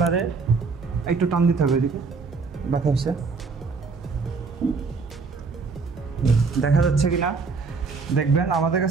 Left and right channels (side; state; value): left; quieter; 4.6 dB